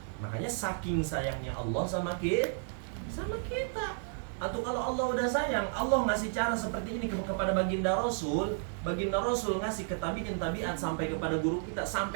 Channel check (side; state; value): left; silent; 56 dB below the other